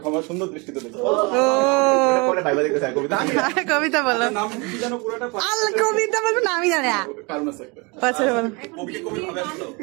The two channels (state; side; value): quieter; left; 28.8 dB